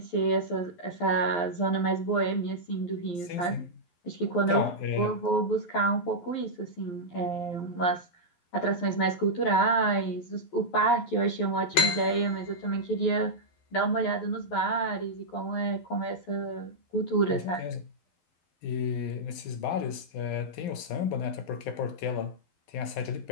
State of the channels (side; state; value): right; late; 12 ms